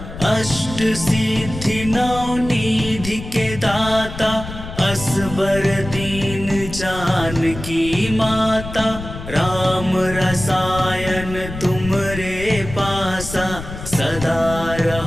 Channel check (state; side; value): noise; left; rumble, 10 dB below the sound